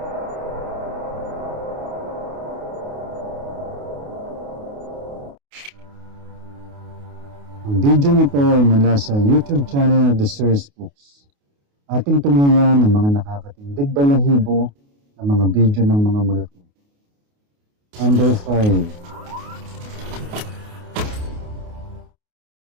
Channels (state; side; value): late; left; 28 ms